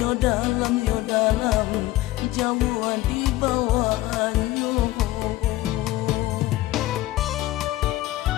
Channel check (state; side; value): quieter; right; 16.8 dB